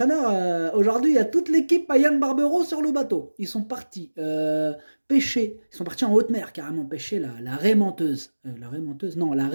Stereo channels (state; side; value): inverted; both; correlation -1.00